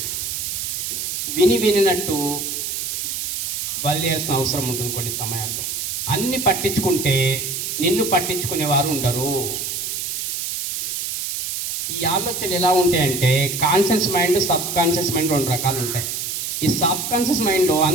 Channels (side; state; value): right; noise; hiss, 3 dB below the sound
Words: వినినట్టు వదిలేయాల్సిన అవసరం ఉంటుంది కొన్ని సమయాల్లో. అన్ని పట్టించుకుంటే నిన్ను పట్టించుకునేవారు ఉండరు. ఈ ఆలోచనలు ఎలా ఉంటాయంటే conscious mind, sub conscious mind 2 రకాలు ఉంటాయి. ఈ సబ్ కాన్షియస్ మైండ్లో